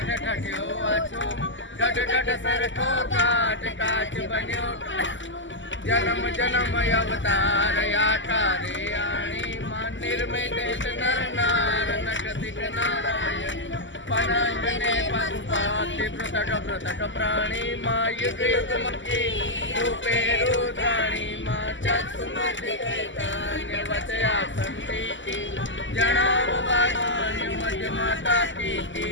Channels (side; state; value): right; late; 0.54 ms